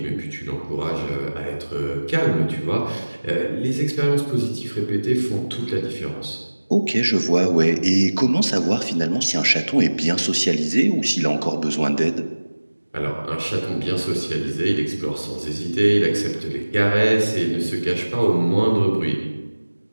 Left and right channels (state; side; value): inverted; both; correlation -1.00